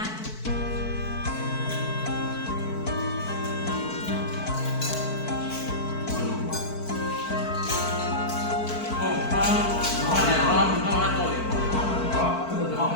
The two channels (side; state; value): right; late; 4.5 ms